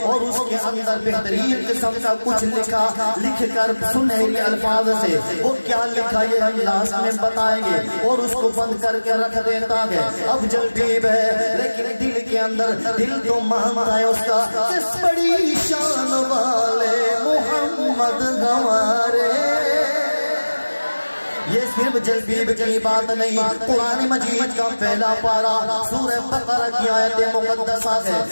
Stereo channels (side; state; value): both; inverted; correlation -1.00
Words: اور اس کے اندر بہترین قسم کا کچھ لکھ کر سنہری الفاظ سے، وہ کیا لکھا یہ ہم لاسٹ میں بتائیں گے، اور اس کو بند کر کے رکھ دیتا ہے۔ اب جلبیب ہے لیکن دل کے اندر دل تو مانتا ہے اس کا، کس بڑی شان والے محمد ہمارے۔ یہ صرف جلبیب کی بات نہیں، قرآن مجید کا پہلا پارہ سورہ بقرہ کی آیت مقدسہ ہے۔